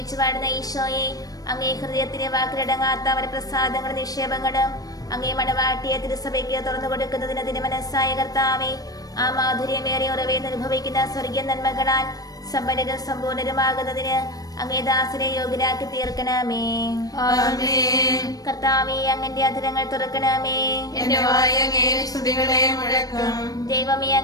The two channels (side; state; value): right; late; 0.18 ms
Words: വാഴുന്ന ഈശോയെ, അങ്ങേ ഹൃദയത്തിന് വാക്കിലടങ്ങാത്ത അവരുടെ പ്രസാദങ്ങളും നിക്ഷേപങ്ങളും അങ്ങേ മണവാട്ടിയെ തിരുസഭയ്ക്ക് തുറന്നു കൊടുക്കുന്നതിന് തിരുമനസ്സായ കർത്താവേ, ആ മാധുര്യമേറിയ ഉറവേന്ന് അനുഭവിക്കുന്ന സ്വർഗീയ നന്മകളാൽ സമ്പന്നരും സമ്പൂർണരുമാകുന്നതിന് അങ്ങേ ദാസനെ യോഗ്യരാക്കി തീർക്കണമേ. ആമേൻ. കർത്താവേ, അങ്ങന്റെ അധരങ്ങൾ തുറക്കണമേ. എന്റെ വായ് അങ്ങേ സ്തുതികളെ മുഴക്കും. ദൈവമേ,